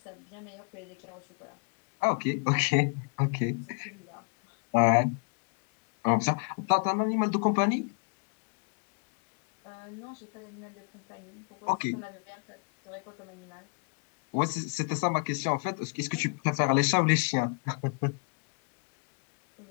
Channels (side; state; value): right; quieter; 38.2 dB